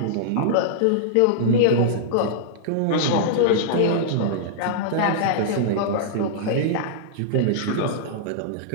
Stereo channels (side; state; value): both; different; correlation -0.02